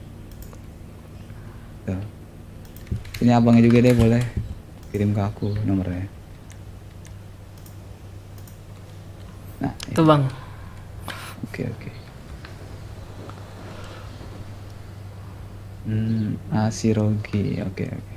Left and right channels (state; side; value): identical; both; correlation 1.00